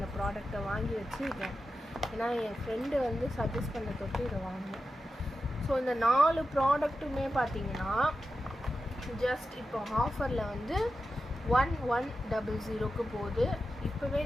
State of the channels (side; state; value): both; normal; correlation 0.91